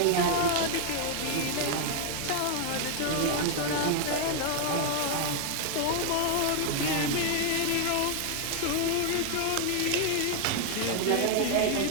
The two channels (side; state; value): both; different; correlation 0.00